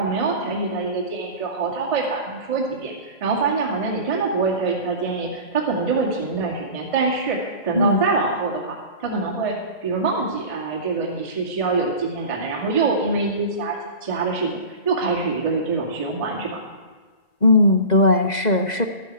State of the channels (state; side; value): late; right; 2.0 ms